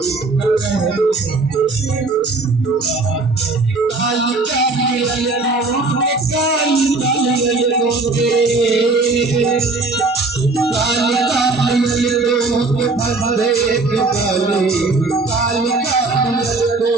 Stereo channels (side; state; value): left; quieter; 3.5 dB